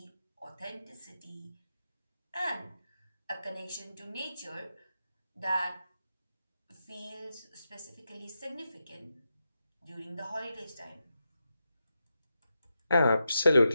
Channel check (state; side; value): inverted; both; correlation -0.87